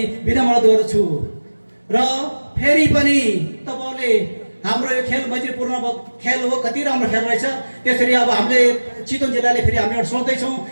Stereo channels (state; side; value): inverted; both; correlation -1.00